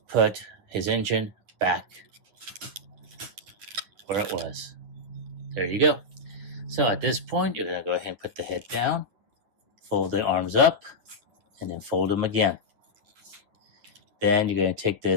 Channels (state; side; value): late; left; 9.7 ms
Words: put his engine back where it was. There you go. So at this point, you're going to go ahead and put the head down, fold the arms up, and then fold them again. Then you're going to take